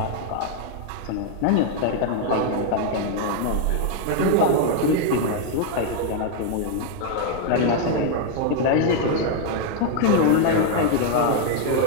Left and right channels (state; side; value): different; both; correlation 0.00